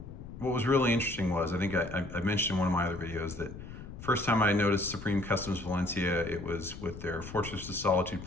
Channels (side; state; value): left; noise; rumble, 12 dB below the sound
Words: what was really interesting was, I think I mentioned in one of my other videos that first time I noticed Supremecustoms Valencia, it was with their Fortress of Solitude